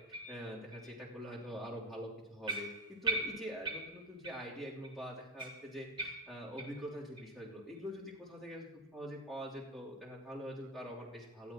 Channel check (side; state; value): both; normal; correlation 0.15